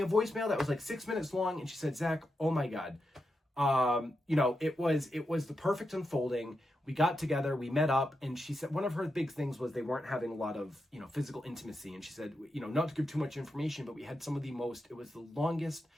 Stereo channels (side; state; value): both; normal; correlation 0.87